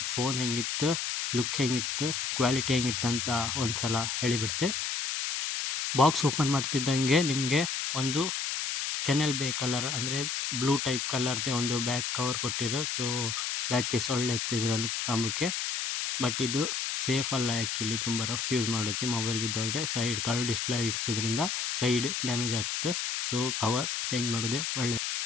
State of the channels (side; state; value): left; noise; hiss, 1 dB below the sound